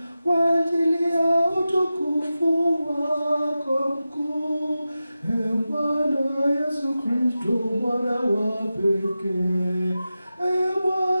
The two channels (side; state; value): both; inverted; correlation -0.93